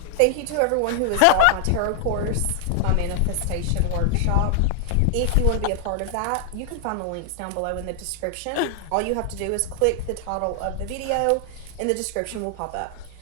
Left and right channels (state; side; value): different; both; correlation 0.00